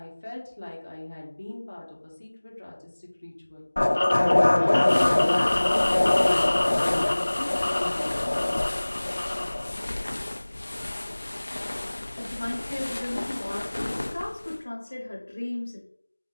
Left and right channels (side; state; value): both; inverted; correlation -1.00